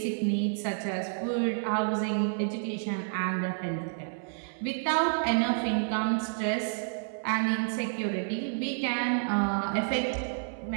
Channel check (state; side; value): silent; left; 58 dB below the other